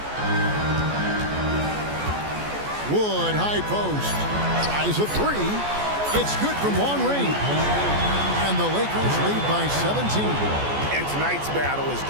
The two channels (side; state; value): left; late; 14 ms